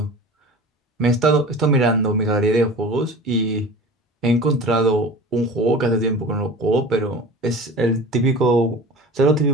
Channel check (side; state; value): both; normal; correlation 0.38